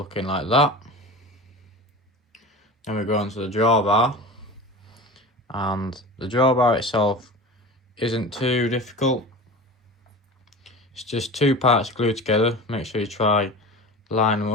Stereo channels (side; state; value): both; normal; correlation 0.33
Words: like that. Then we go onto the drawbar, and the drawbar itself isn't too difficult. It's just 2 parts glued together. Make sure you try line them